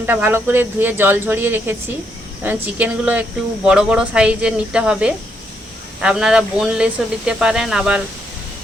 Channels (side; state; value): both; normal; correlation 0.75